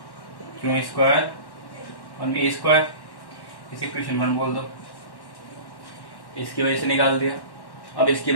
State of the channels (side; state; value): right; late; 1.1 ms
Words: क्यू स्क्वायर और ए स्क्वायर। इसे इक्वेशन 1 बोल दो। इसकी वजह से निकाल दिया। अब इसकी